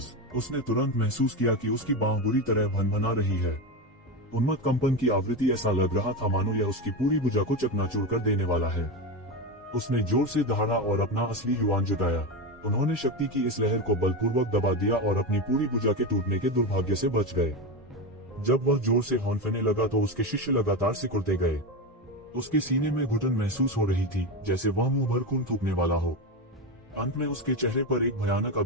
उसने तुरंत महसूस किया कि उसकी बांह बुरी तरह भनभना रही है। उन्मत्त कंपन की आवृत्ति ऐसा लग रहा था मानो यह उसकी पूरी भुजा को चकनाचूर कर देने वाला है। उसने जोर से दहाड़ा और अपना असली युवान जुटाया। उन्होंने शक्ति की इस लहर को बलपूर्वक दबा दिया और अपनी पूरी भुजा के टूटने के दुर्भाग्य से बच गए। जब वह जोर से हौंफने लगा तो उसके शिष्य लगातार सिकुड़ते गए। उसके सीने में घुटन महसूस हो रही थी, जैसे वह मुंह भर खून थूकने वाला हो। अंत में उसके चेहरे पर एक भयानक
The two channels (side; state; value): both; normal; correlation 0.16